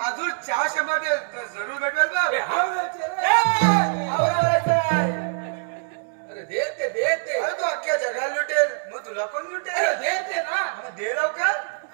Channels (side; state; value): left; silent; 63 dB below the other